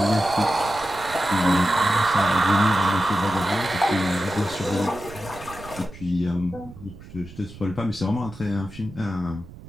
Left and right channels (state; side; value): noise; right; rumble, 17 dB below the sound